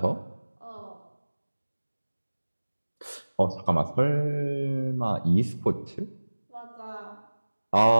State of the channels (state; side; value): inverted; both; correlation -1.00